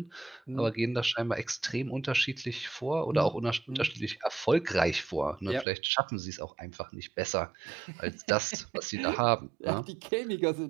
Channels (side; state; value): left; drops out; at 5.7 s